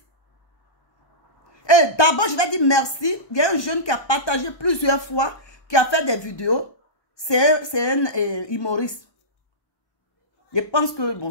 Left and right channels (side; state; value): right; late; 1.2 ms